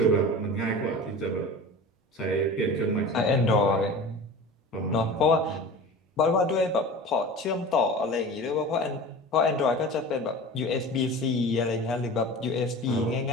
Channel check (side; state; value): both; normal; correlation 0.35